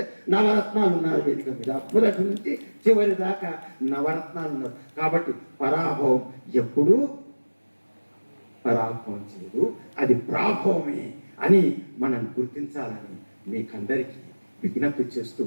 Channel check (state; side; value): inverted; both; correlation -1.00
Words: నవరత్నాలు ఉన్నారు వేదిక మీద. మొదటి నుంచి చివరి దాకా నవరత్నాలు ఉన్నారు. కాబట్టి పరాభవం ఎప్పుడూ పరాభవం చేయదు, అది ప్రాభవమే అని మనం గుర్తించాలని మీకందరికీ విజ్ఞప్తి చేస్తూ